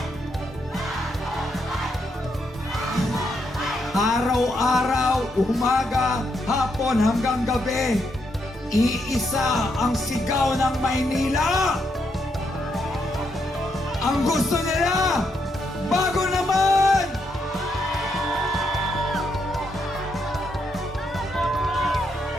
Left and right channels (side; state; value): both; normal; correlation 0.79